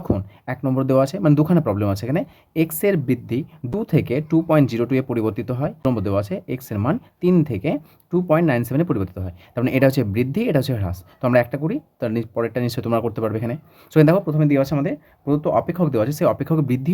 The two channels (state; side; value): identical; both; correlation 1.00